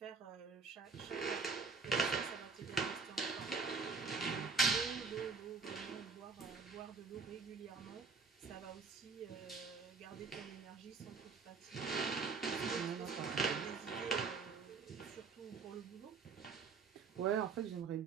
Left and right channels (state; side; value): quieter; left; 4.7 dB